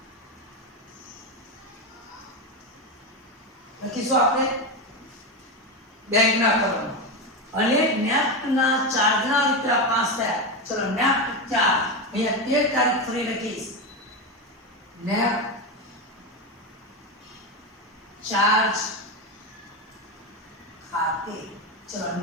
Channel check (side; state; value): both; normal; correlation 0.14